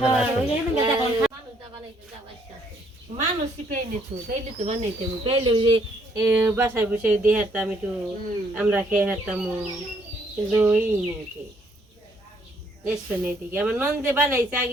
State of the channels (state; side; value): normal; both; correlation 0.68